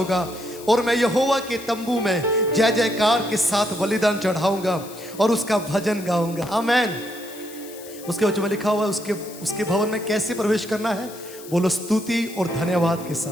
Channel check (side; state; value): left; noise; hiss, 17 dB below the sound